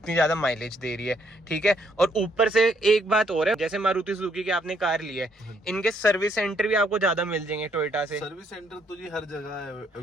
ज्यादा माइलेज दे रही है, ठीक है। और ऊपर से एक बात और है, जैसे मारुति सुजुकी की आपने कार ली है, इनके सर्विस सेंटर भी आपको ज्यादा मिल जाएंगे टोयोटा से। सर्विस सेंटर तो जी हर जगह है।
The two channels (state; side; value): normal; both; correlation 0.70